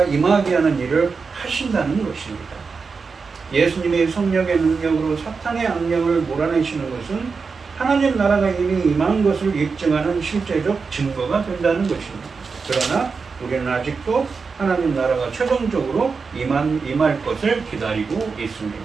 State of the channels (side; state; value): left; quieter; 5.0 dB